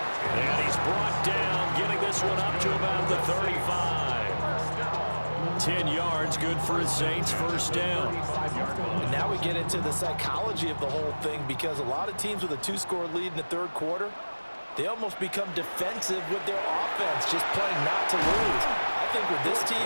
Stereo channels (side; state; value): both; inverted; correlation -1.00